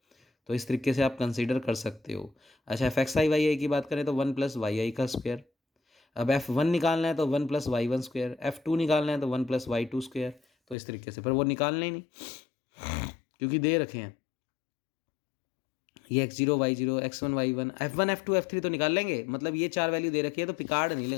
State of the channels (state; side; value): drops out; right; at 10.8 s